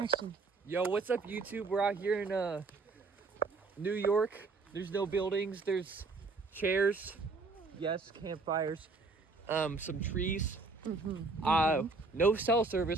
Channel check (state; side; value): quieter; left; 3.8 dB